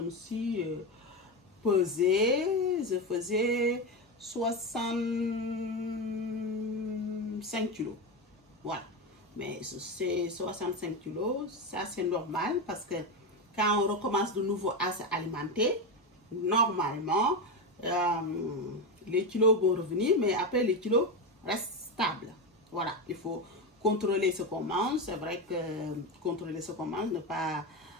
suis pesée, je faisais 65 kilos. Voilà. Mais c'est 65 kilos, ça c'est normal parce que quand on recommence de nouveau à s'alimenter, normalement, les kilos vont revenir, mais après les kilos restent stables. Voilà, il faut contrôler ce qu'on mange. C'est vrai que contrôler ce qu'on mange, ne pas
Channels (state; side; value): normal; both; correlation 0.15